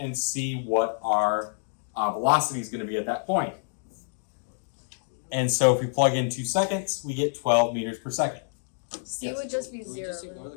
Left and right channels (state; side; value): silent; right; digital silence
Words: see what our velocity is going to be at that point. And so if we plug in 2 seconds, we get 12 meters per second. C would just be Can we 0. just ignore the